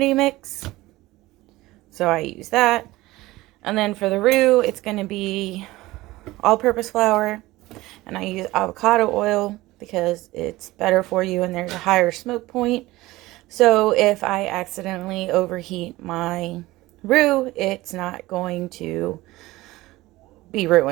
mix. So I use that. And then for the roux, it's going to be all-purpose flour. And I use avocado oil because it's better for you and there's a higher smoke point. So if I accidentally overheat my roux, it's not going to be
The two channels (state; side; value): quieter; left; 18.7 dB